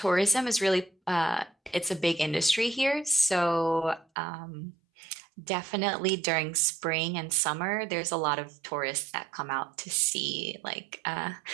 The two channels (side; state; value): left; drops out; at 4.0 s